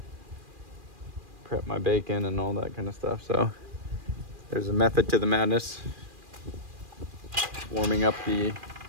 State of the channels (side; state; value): left; late; 2.4 ms